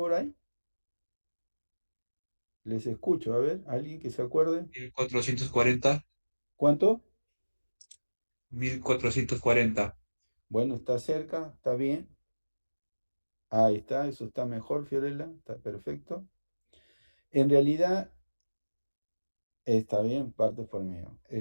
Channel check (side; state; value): both; inverted; correlation -1.00